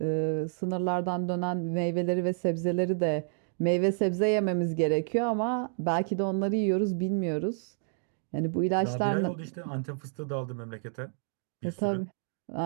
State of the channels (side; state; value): left; silent; digital silence